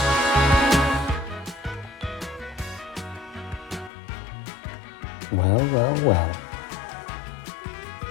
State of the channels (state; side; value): drops out; right; at 3.9 s